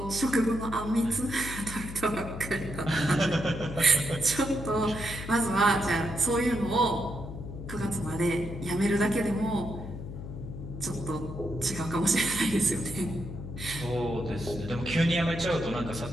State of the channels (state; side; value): noise; left; hum, 9 dB below the sound